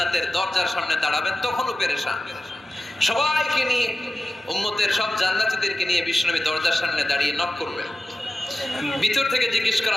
দরজার সামনে দাঁড়াবেন। তখনও পেরেশান, সবাইকে নিয়ে, উম্মতের সব জান্নাতীদেরকে নিয়ে বিশ্বনবী দরজার সামনে দাঁড়িয়ে নক করবেন। ভিতর থেকে জিজ্ঞেস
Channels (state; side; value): normal; both; correlation 0.94